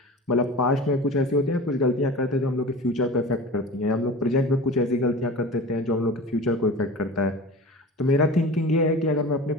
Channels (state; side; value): normal; both; correlation 0.35